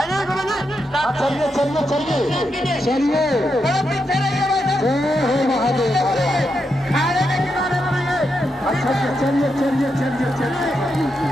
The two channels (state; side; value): normal; both; correlation 0.84